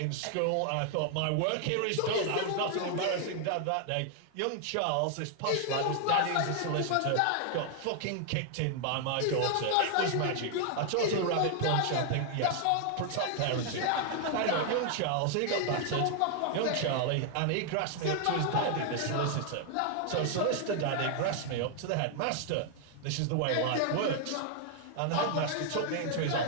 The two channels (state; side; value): different; both; correlation 0.00